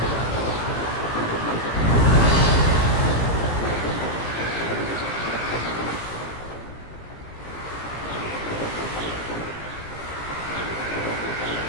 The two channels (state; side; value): late; right; 17 ms